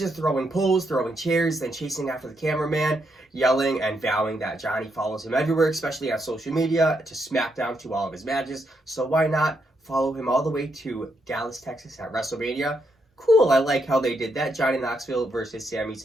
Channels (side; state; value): both; normal; correlation 0.79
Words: throwing poles, throwing chairs, then chasing after the cameraman, yelling and vowing that Johnny follows him everywhere, especially on social media, to SmackDown, to all of his matches. So why not follow him all the way to Dallas, Texas at WrestleMania? Cool, I like how they did that. Johnny Knoxville versus Sami